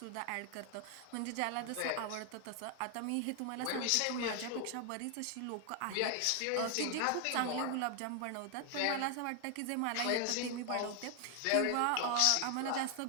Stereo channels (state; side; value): different; both; correlation 0.00